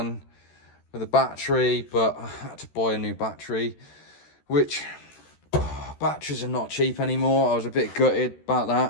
with the battery, but I had to buy a new battery, which batteries are not cheap anymore. I was a bit gutted about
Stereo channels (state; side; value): late; right; 13 ms